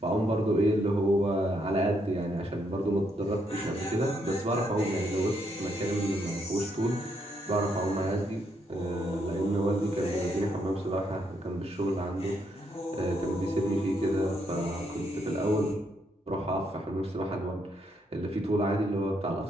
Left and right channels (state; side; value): normal; both; correlation 0.75